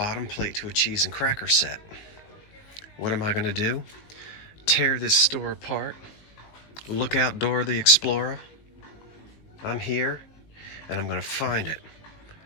plate to a cheese and cracker set. What am I going to do? Tear this store apart. Look out, Dora the Explorer. I'm here, and I'm going to find it.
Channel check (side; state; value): right; late; 19 ms